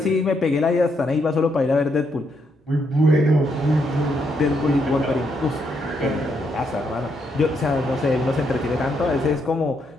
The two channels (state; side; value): normal; both; correlation 0.77